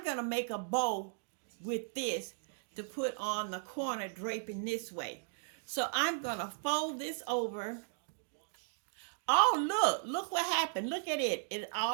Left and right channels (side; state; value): left; silent; digital silence